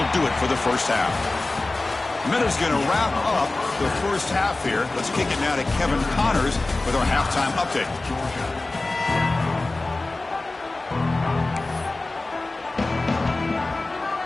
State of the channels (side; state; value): right; quieter; 3.1 dB